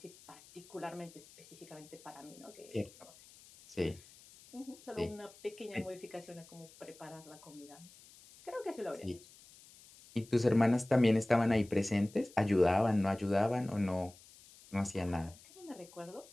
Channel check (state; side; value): noise; left; hiss, 22 dB below the sound